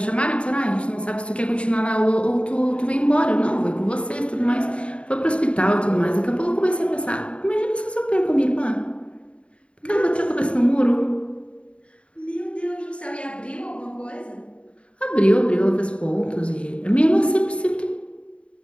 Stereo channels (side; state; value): right; late; 0.059 ms